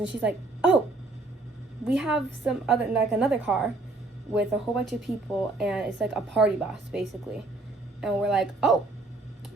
she's like, oh, we have another car with a whole bunch of people, and it's like a party bus basically. And we're like, oh,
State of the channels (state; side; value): quieter; left; 3.1 dB